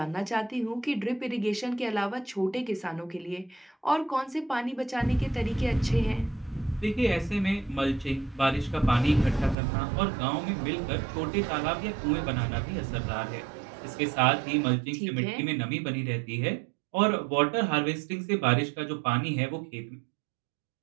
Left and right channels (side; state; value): left; drops out; at 9.6 s